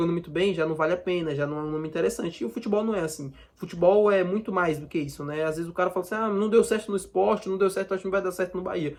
muito bem, já não vale a pena, já não é um nome interessante. E o futebol não é assim. Futebol é muito mais do que isso, né? Às vezes o cara fala assim, não deu certo no Sport, não deu certo, acho que não vai dar certo no Bahia.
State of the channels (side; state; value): both; identical; correlation 1.00